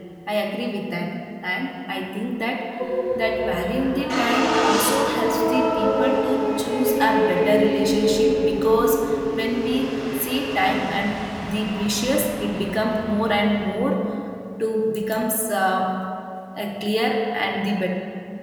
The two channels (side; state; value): both; identical; correlation 1.00